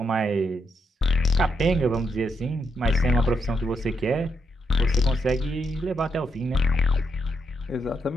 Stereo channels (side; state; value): both; normal; correlation 0.80